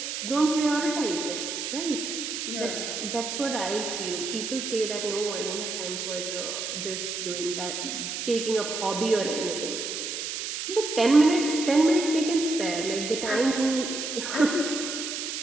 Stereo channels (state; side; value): noise; right; hiss, 4 dB below the sound